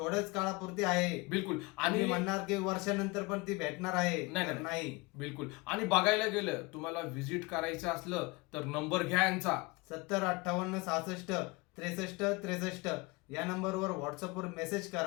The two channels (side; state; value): right; quieter; 25.1 dB